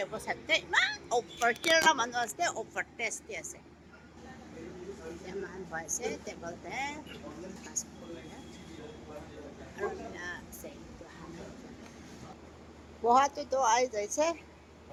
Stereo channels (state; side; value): identical; both; correlation 1.00